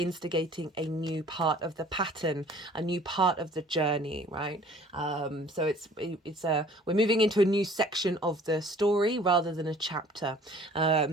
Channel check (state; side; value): normal; both; correlation 0.52